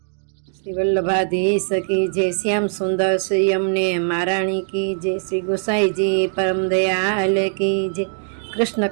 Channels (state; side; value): silent; left; digital silence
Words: श्री वल्लभाधीश की जय, श्याम सुंदर श्री अमने महाराणी की जय, श्री गोसाई जी परम दयाल की जय, कृष्ण